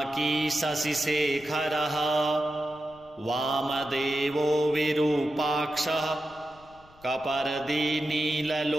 शशिशेखरः वामदेवो विरूपाक्षः कपर्दी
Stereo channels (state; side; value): noise; left; rumble, 26 dB below the sound